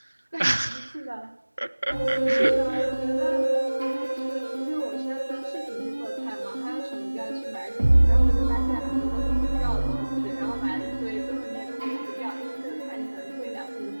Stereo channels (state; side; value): inverted; both; correlation -1.00